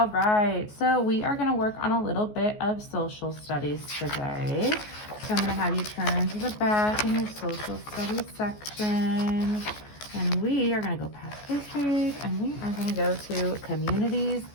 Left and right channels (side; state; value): right; late; 14 ms